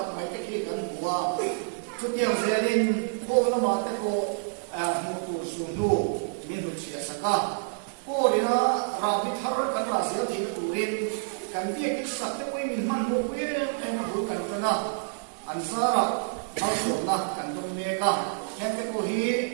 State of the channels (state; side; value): silent; left; 57 dB below the other